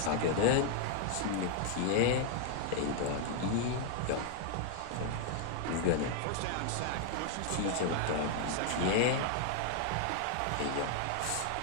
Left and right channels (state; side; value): different; both; correlation 0.00